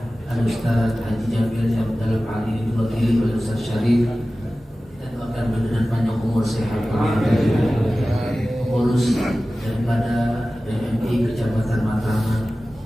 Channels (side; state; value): both; normal; correlation 0.96